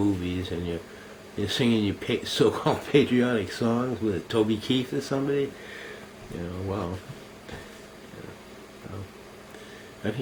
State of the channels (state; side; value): identical; both; correlation 1.00